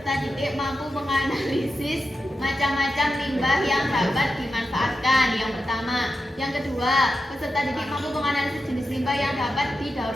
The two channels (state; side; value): normal; both; correlation 0.90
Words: didik mampu menganalisis macam-macam limbah yang dapat dimanfaatkan. Yang pertama. Yang kedua, peserta didik mampu menganalisis jenis limbah yang dapat didaur